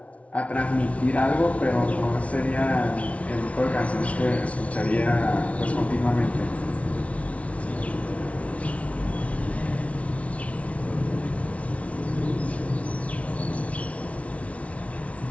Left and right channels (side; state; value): right; late; 0.065 ms